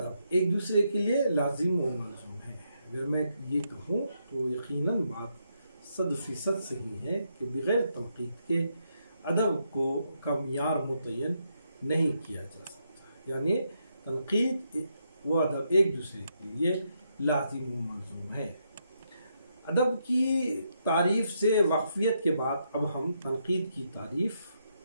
ایک دوسرے کے لیے لازم و ملزوم ہے۔ اگر میں یہ کہوں تو یقیناً بات 100% صحیح ہے کہ بغیر تنقید کے ادب کا معیار متعین نہیں کیا جا سکتا، یعنی تنقید و ادب ایک دوسرے کے لیے لازم و ملزوم ہے۔ ادب کی تعریف سے واقفیت کے بعد اب ہم تنقید کی تعریف،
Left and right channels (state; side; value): inverted; both; correlation -0.79